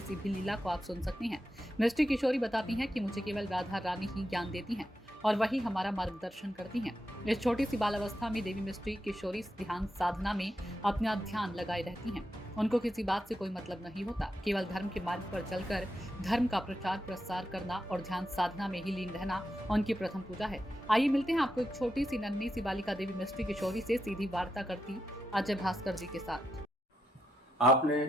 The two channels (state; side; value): normal; both; correlation 0.85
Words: भी लीला को आप सुन सकते हैं। मिष्टी किशोरी बताती हैं कि मुझे केवल राधा रानी ही ज्ञान देती हैं और वही हमारा मार्गदर्शन करती हैं। इस छोटी सी बाल अवस्था में देवी मिष्टी किशोरी ध्यान साधना में अपना ध्यान लगाए रहती हैं। उनको किसी बात से कोई मतलब नहीं होता, केवल धर्म के मार्ग पर चलकर धर्म का प्रचार प्रसार करना और ध्यान साधना में ही लीन रहना उनकी प्रथम पूजा है। आइए मिलते हैं आपको एक छोटी सी नन्ही सी बालिका देवी मिष्टी किशोरी से सीधी वार्ता करती अजय भास्कर जी के साथ।